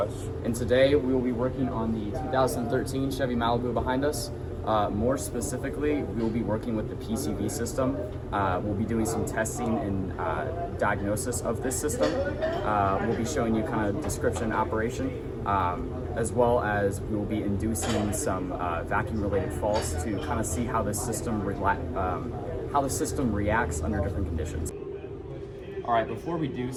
And today we will be working on the 2013 Chevy Malibu behind us. More specifically, we will be working with the PCV system. We'll be doing some testing and diagnosis of this system. We'll be showing you kind of description and operation, as well as we will be inducing some vacuum-related faults to kind of see how the system reacts under different conditions. All right, before we do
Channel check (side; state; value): both; identical; correlation 1.00